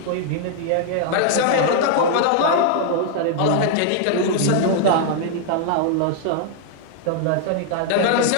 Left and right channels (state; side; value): different; both; correlation 0.00